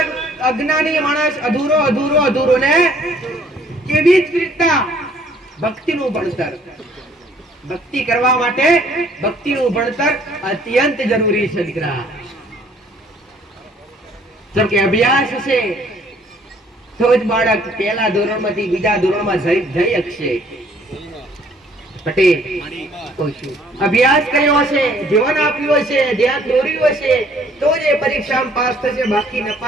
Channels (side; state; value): both; normal; correlation 0.60